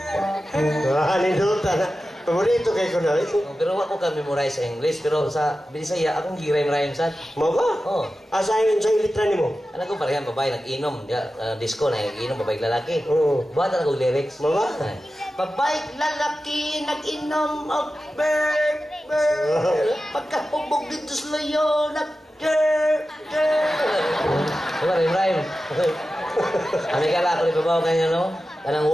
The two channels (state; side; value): normal; both; correlation 0.93